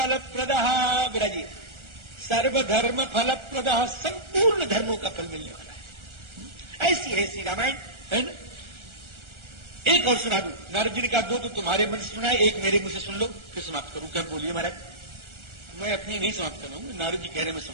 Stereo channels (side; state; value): left; late; 1.4 ms